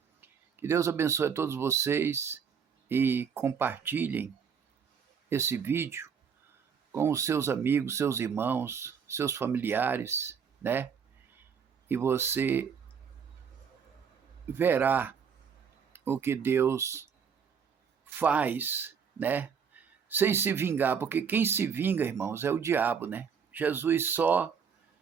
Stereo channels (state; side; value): quieter; left; 6.7 dB